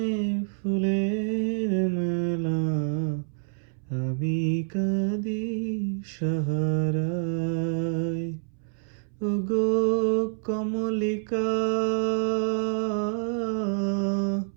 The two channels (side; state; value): left; silent; 60 dB below the other